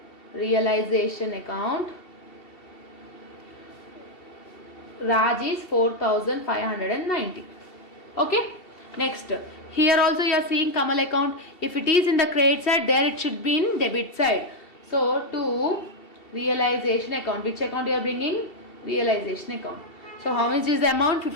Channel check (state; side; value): late; right; 2.7 ms